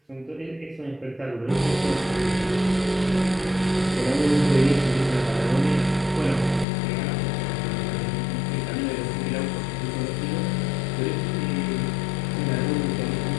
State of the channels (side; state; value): right; drops out; at 6.7 s